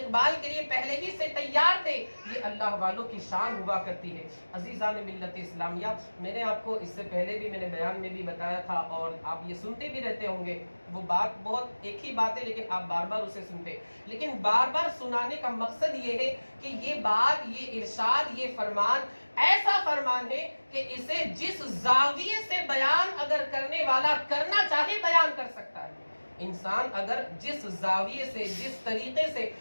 کے لیے پہلے ہی سے تیار تھے۔ یہ اللہ والوں کی شان ہوا کرتی ہے۔ عزیزان ملت اسلامیہ، میں نے آپ کو اس سے پہلے بھی میں نے بیان میں بھی بتایا تھا، اور آپ یہ سنتے بھی رہتے ہوں گے، وہ بات بہت ایک ہی بات ہے لیکن آپ بار بار اسے سنتے، لیکن بار بار سنانے کا مقصد یہ ہے کہ یہ بات، یہ ارشاد، یہ فرمان ایسا فرمان ہے کہ اسے جس زاویے سے بیان اگر کرنے والا کرنا چاہے بیان کر سکتا ہے۔ انسان اگر جس زاویے سے، جس طریقے سے،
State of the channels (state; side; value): inverted; both; correlation -1.00